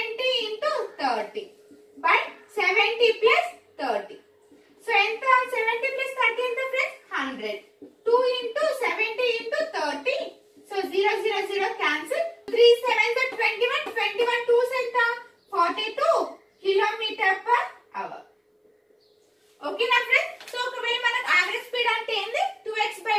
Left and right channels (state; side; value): identical; both; correlation 1.00